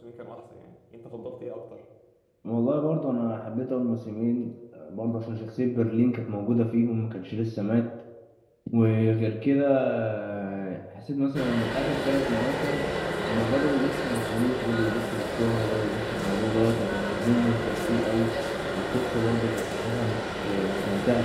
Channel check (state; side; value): identical; both; correlation 1.00